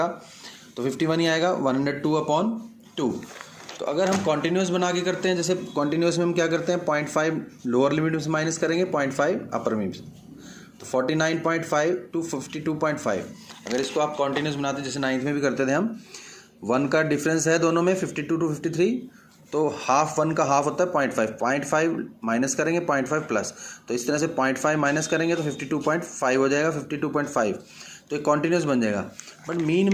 तो 51 ही आएगा, 102/2। तो अगर हम कॉन्टिन्यूस बना के करते हैं, जैसे कॉन्टिन्यूस में हम क्या करते हैं, 0.5 लोअर लिमिट में से माइनस करेंगे, 0.5 अपर लिमिट से, तो 49.5 टू 52.5। अगर इसको आप कॉन्टिन्यूस बनाते हैं, जैसे 9th में भी करते थे हम, 1 का डिफरेंस है दोनों में 52 टू 53, तो हाफ 1 का हाफ होता है 0.5 माइनस करेंगे 0.5 प्लस, तो इस तरह से 0.5 माइनस करेंगे तो 52.5 हो जाएगा, 52.5, तो एक कॉन्टिन्यूस बन जाएगा। बट मीन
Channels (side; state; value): both; identical; correlation 1.00